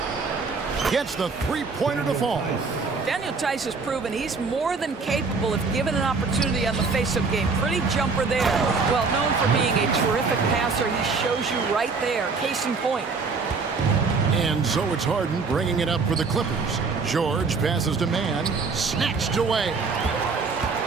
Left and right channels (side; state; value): left; quieter; 4.6 dB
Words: Gets the 3-pointer to fall. Daniel Tice has proven he's more than capable if given an opportunity on the face-up game. Pretty jumper there. Well, known for being a terrific passer, he shows you right there. Case in point. And so it's Harden bringing it up for the Clippers. George passes to man. Snatched away.